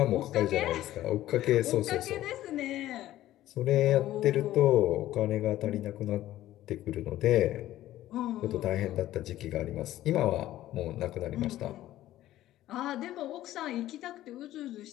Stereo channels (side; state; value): right; quieter; 14.3 dB